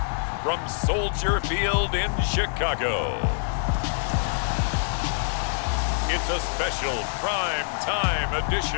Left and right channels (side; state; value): right; silent; digital silence